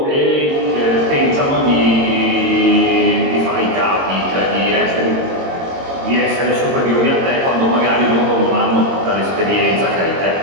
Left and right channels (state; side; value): late; left; 22 ms